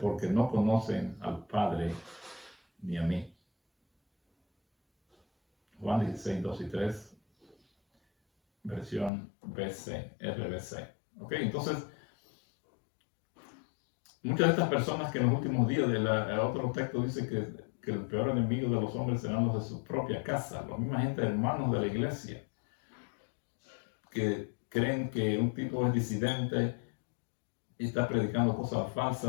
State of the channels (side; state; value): right; drops out; at 9.1 s